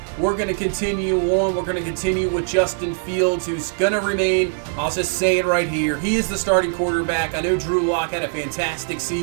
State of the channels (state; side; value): silent; left; 65 dB below the other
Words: We're going to continue on. We're going to continue with Justin Fields, who's going to remain. I'll just say it right here. He is the starting quarterback. I know Drew Lock had a fantastic